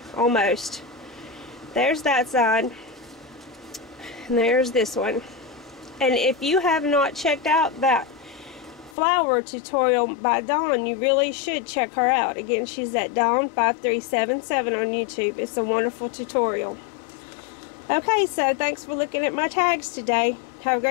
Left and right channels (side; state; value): right; drops out; at 9.0 s